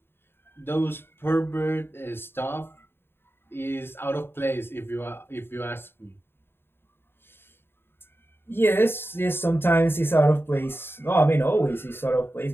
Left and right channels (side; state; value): right; late; 0.11 ms